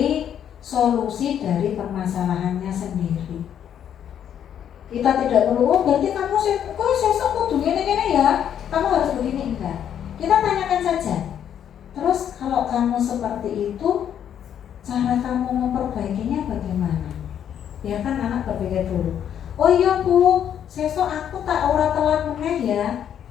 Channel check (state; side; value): quieter; right; 9.4 dB